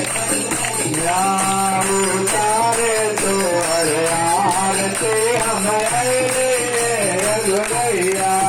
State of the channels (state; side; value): identical; both; correlation 1.00